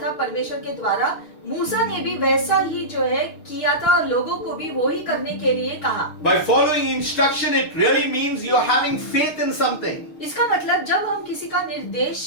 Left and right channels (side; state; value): right; late; 6.4 ms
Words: था परमेश्वर के द्वारा, मूसा ने भी वैसा ही जो है किया था और लोगों को भी वो ही करने के लिए कहा। By following instruction, it really means you are having faith in something. इसका मतलब जब हम किसी का